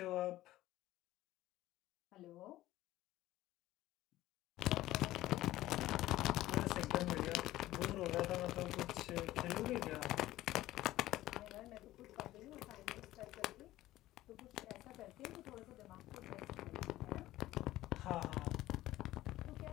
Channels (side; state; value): right; quieter; 15.7 dB